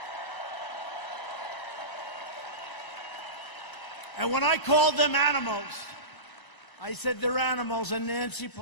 And when I called them animals, I said they're animals. And Nancy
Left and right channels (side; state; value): right; late; 1.3 ms